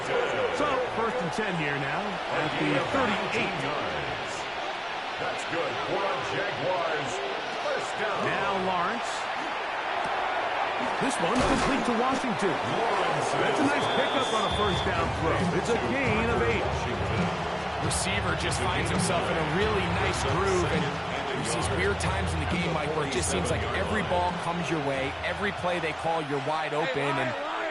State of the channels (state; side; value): identical; both; correlation 1.00